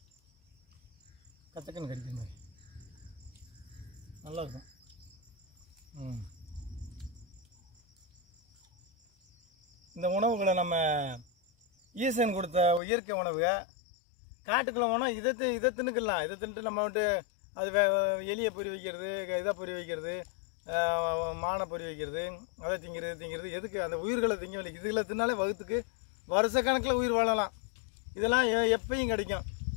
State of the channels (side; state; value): right; drops out; at 12.8 s